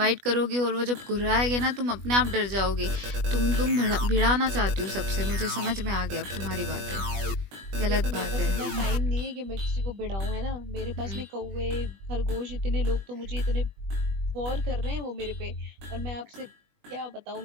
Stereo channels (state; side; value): late; left; 20 ms